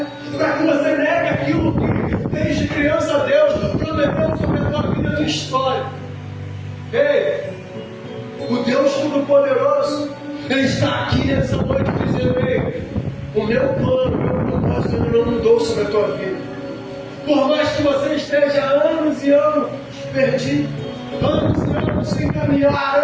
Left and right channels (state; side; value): identical; both; correlation 1.00